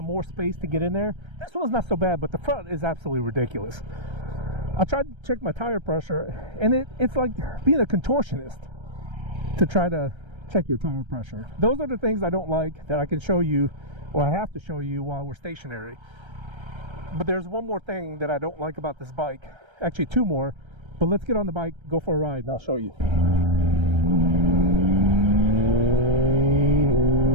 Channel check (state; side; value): late; left; 1.3 ms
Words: more space to get in there? This one's not so bad, but the front is absolutely ridiculous. I tried to check my tire pressure, and it's like being a contortionist to try to check your tire pressure. Those are the things I don't like that I can show you, or I have to show you while we're stationary. But there's one more thing that I don't like about this bike. Actually 2 more, but let's get on the bike, go for a ride, and I'll show you.